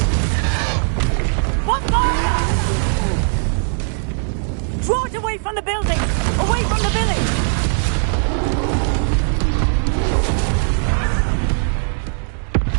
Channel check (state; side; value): silent; left; digital silence